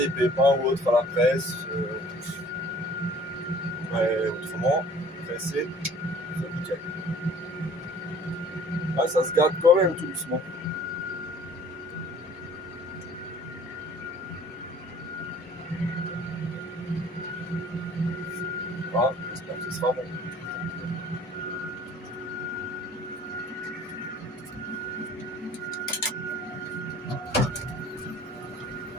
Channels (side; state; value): both; normal; correlation 0.51